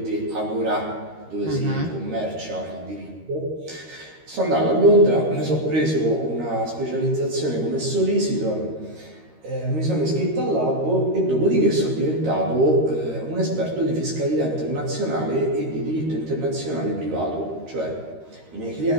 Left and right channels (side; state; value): left; late; 13 ms